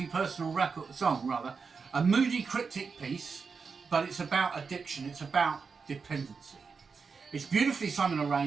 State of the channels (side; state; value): left; quieter; 5.2 dB